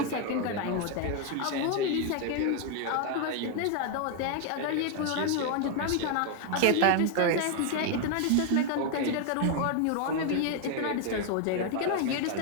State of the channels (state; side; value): different; both; correlation 0.01